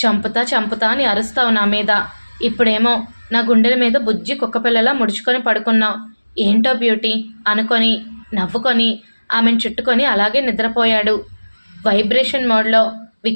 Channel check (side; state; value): both; inverted; correlation -1.00